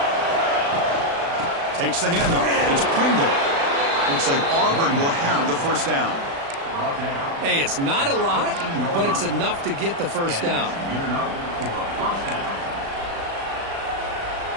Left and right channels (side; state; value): left; late; 36 ms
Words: Takes the handoff. It's Pringle. Looks like Auburn will have the first down. Hey, it's not a lot, but it's enough to get the first down.